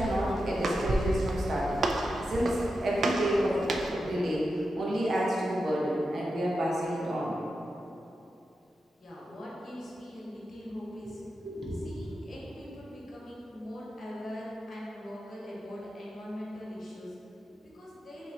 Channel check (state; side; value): normal; both; correlation 0.89